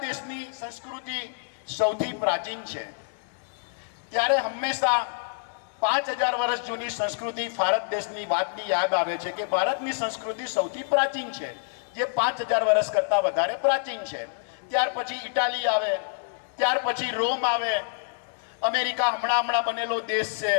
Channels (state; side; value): silent; right; digital silence